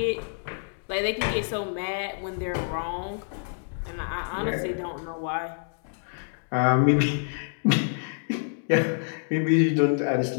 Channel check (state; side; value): silent; right; digital silence